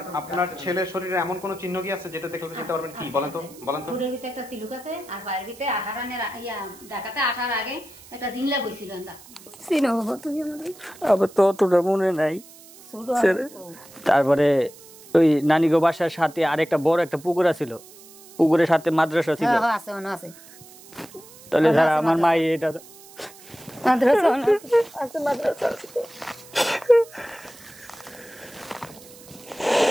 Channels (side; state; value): right; noise; hiss, 21 dB below the sound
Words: আপনার ছেলের শরীরে এমন কোনো চিহ্ন কি আছে যেটা দেখলে চিনতে পারবেন? কি বলেন তো, বলেন তো। ঠোঁটের ভিতরে একটা তিলুক আছে, আর পায়ের ভিতরে ঢাকাতে আসার আগে একটা জিংলা বইছিল। চিনো বাবা তুমি আমাদের? আবার তো অতটা মনে নাই। তারপরে ওই নানিগো বাসার সাথে আরেকটা বড় একটা পুকুর ছিল, পুকুরের সাথে মাদ্রাসা ছিল। আছে মনে আছে। তাহলে যারা আমার মা এটা মাদ্রাসা আছে, মাদ্রাসা